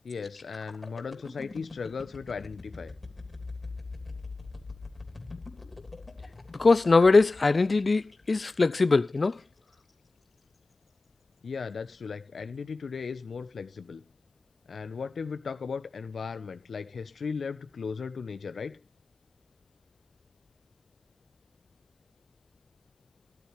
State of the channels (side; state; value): right; quieter; 3.4 dB